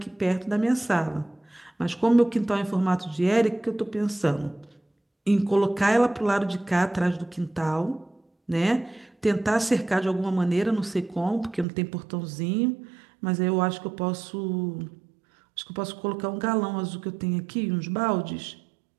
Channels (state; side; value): drops out; left; at 11.7 s